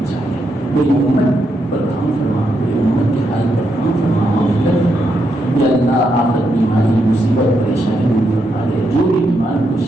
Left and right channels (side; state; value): both; normal; correlation 0.81